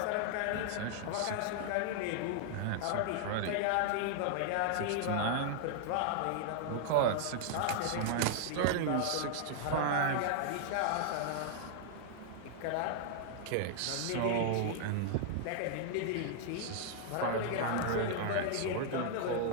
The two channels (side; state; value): both; different; correlation -0.01